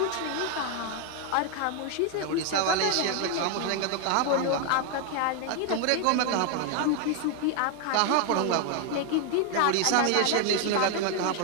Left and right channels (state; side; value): different; both; correlation 0.01